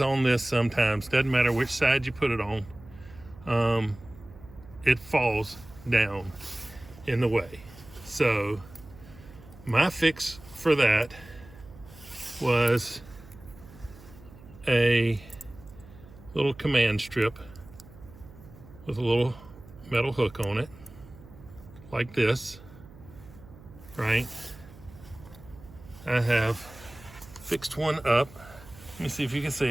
this sometimes. Doesn't matter which side you put it on. It falls down in the way. So my fix for that was a little command strip with a little metal hook on it, like this, right? I have fixed one up. Let me see if you can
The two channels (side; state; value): right; noise; hum, 20 dB below the sound